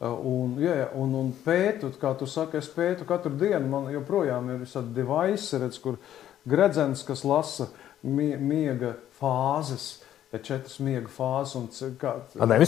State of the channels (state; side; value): quieter; right; 11.5 dB